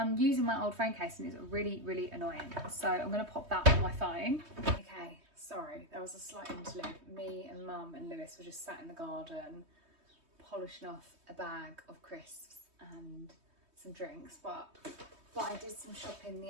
using my old phone case and it's really, really annoying. So I'm going to pop that on my phone. Okay, sorry, there was a slight interlude. Me and Mum and Lewis were just sat in the garden polishing off a bag of crisps and some drinks, but I did some shopping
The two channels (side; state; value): left; late; 3.2 ms